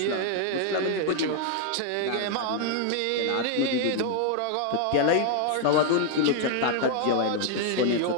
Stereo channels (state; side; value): different; both; correlation 0.00